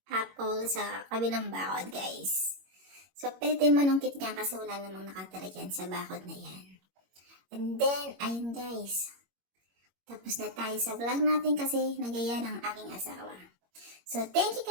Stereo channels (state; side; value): late; left; 21 ms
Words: apple sa kabilang bakod, guys. So, pwede manungkit niya kasi wala namang nakatira dyan sa bakod na yan. And then, ayun guys. Tapos na tayo sa vlog natin kasi nagaya ng aking asawa. So, thank you